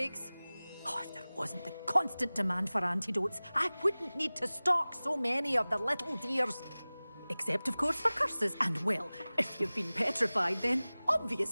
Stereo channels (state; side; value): inverted; both; correlation -0.99